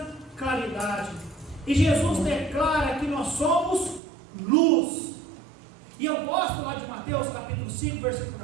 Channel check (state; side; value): drops out; left; at 4.0 s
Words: claridade. E Jesus declara que nós somos luz. E eu gosto lá de Mateus capítulo 5, versículo